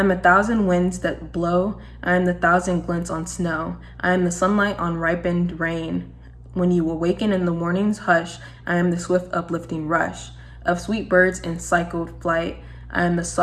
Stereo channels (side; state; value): both; identical; correlation 1.00